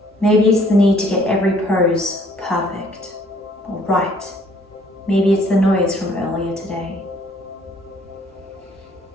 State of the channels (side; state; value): both; normal; correlation 0.61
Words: Maybe it's the need to get every pose perfect or right. Maybe it's the noise from earlier today.